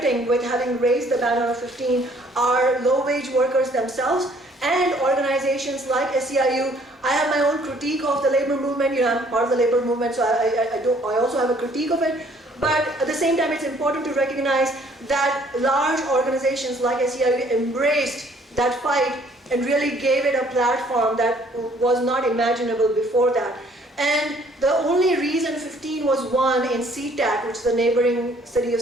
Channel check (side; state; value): both; normal; correlation 0.60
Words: with having raised the banner of 15 are low-wage workers themselves and organizations like SEIU. I have my own critique of the labor movement. You know, I'm part of the labor movement, so I also have a critique of it. But at the same time, it's important to recognize that large organizations like SEIU embraced that fight and really gave it a platform that was not imaginable before that. And the only reason 15 was won in SeaTac, which is the neighboring city of